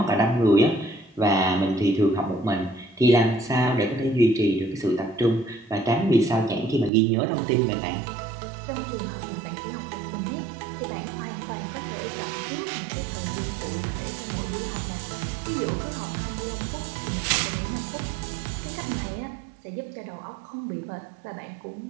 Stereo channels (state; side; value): drops out; left; at 6.9 s